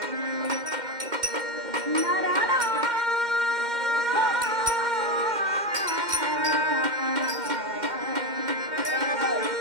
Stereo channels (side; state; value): left; late; 2.1 ms